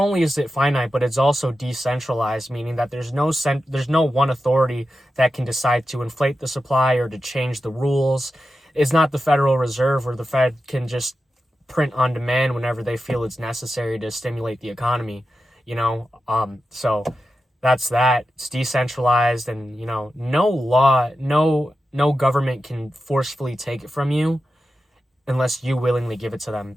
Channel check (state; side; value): normal; both; correlation 0.91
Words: is it finite, but it's also decentralized, meaning that there's no one authority that can decide to inflate the supply or to change the rules. It's not the Federal Reserve where the Fed can just print on demand whenever they feel it's necessary to stimulate the economy, So that's that. It's decentralized, and no law, no government can forcefully take it from you unless you willingly give it to them,